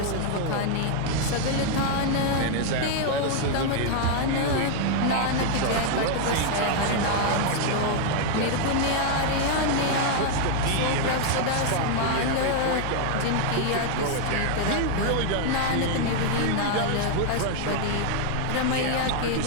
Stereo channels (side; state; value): both; different; correlation 0.00